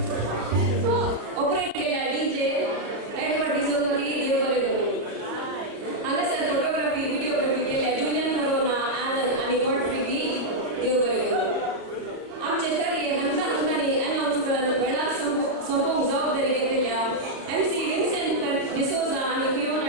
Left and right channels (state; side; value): late; left; 33 ms